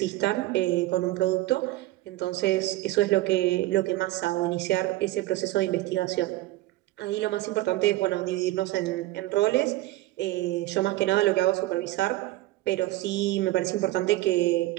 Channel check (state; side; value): quieter; left; 17.1 dB